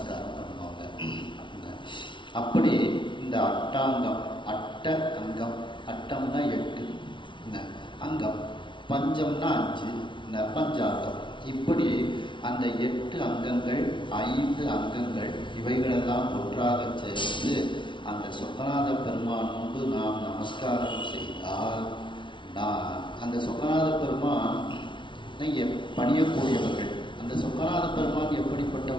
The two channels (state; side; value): late; right; 0.24 ms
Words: பண்ணுவாங்க. அப்படி இந்த அட்டாங்கம், அட்ட அங்கம், அட்டம்னா 8 அங்கம், பஞ்சம்னா 5 பஞ்சாங்கம். இப்படி அந்த 8 அங்கங்கள் 5 அங்கங்கள் இவைகளெல்லாம் ஒன்றாக சேர்ந்து அந்த சொக்கநாத பெருமான் முன்பு நாம் நமஸ்காரம் செய்தால் அந்த சொக்கநாத பெருமான் பணியக்கூடியவர்கள். அந்த சொக்கநாத பெருமான்